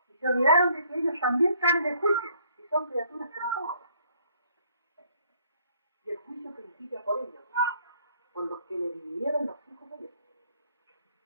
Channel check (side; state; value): both; inverted; correlation -0.63